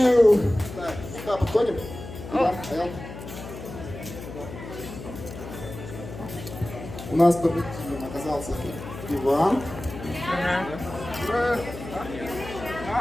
Так, сюда подходим. Иван, Аял. У нас победителем оказался Иван.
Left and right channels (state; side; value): noise; left; hum, 11 dB below the sound